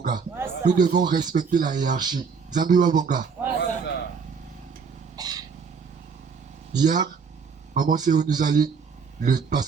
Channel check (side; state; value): left; quieter; 5.7 dB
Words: Nous devons respecter la hiérarchie. Zambi Wabonga. Hier, Maman Séo nous a lu le